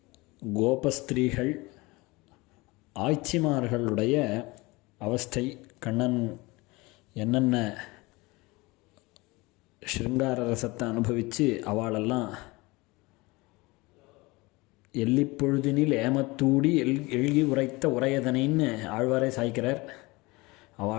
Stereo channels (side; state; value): right; quieter; 23.3 dB